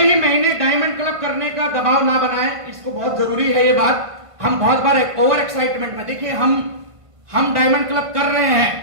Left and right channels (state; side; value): late; left; 1.5 ms